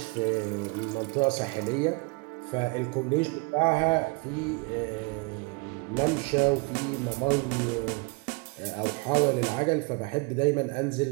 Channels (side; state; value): left; quieter; 28.9 dB